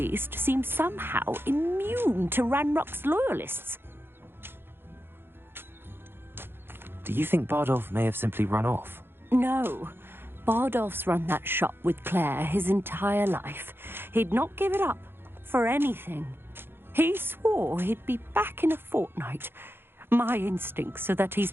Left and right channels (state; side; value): late; left; 0.10 ms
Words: seems somehow immune to Ranrock's loyalists. Do you think Bardolph may have simply run off? No. Bardolph's run that shop with Claire his entire life. He'd not give it up for anything. He swore he'd be back in a fortnight. My instincts are that he's